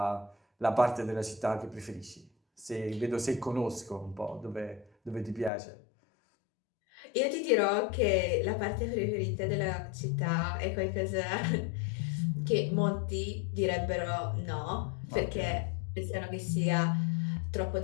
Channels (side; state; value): right; drops out; at 5.5 s